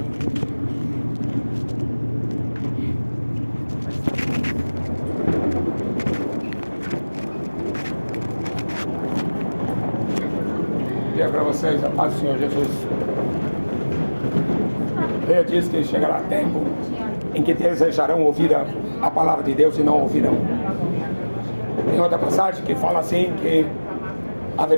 Dia para vocês, a paz do Senhor Jesus. Ele diz que chegará tempo em que desejarão ouvir a palavra de Deus e não ouvirão. Tem outra passagem que fala assim, que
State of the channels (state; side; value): inverted; both; correlation -1.00